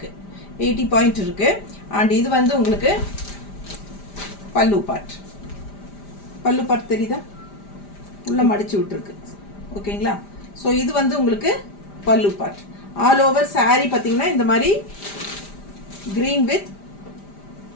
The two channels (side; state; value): right; late; 5.0 ms